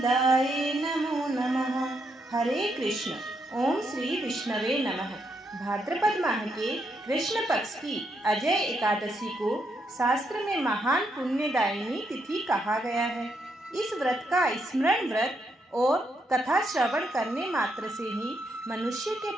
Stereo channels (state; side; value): normal; both; correlation 0.78